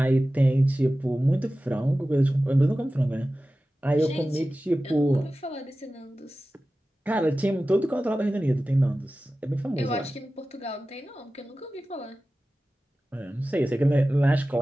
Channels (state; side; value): normal; both; correlation 0.95